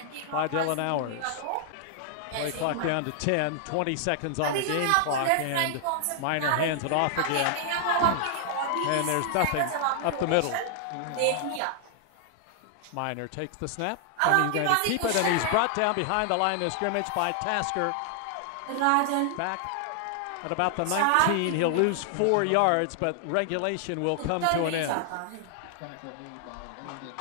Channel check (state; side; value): different; both; correlation 0.00